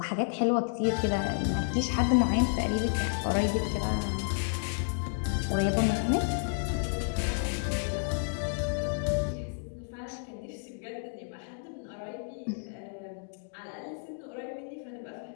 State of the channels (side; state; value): right; silent; digital silence